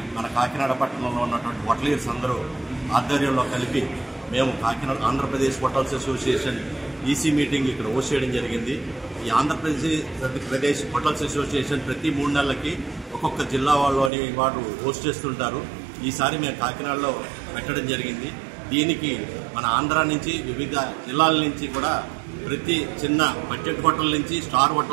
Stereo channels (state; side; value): drops out; left; at 14.1 s